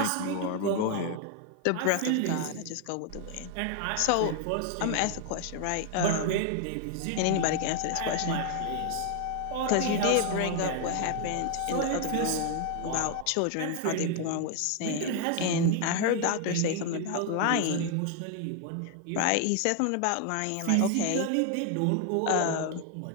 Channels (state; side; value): different; both; correlation 0.00